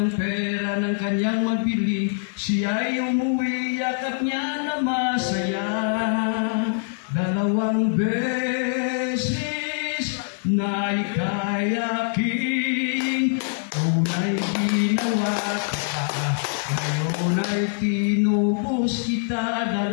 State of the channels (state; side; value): silent; right; digital silence